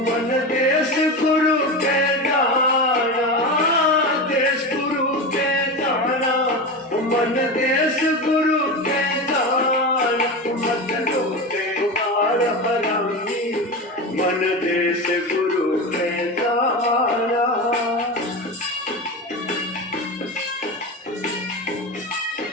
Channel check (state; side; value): normal; both; correlation 0.23